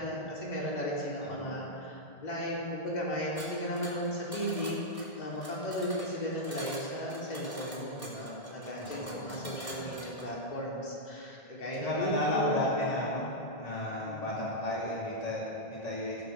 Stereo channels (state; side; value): late; right; 1.6 ms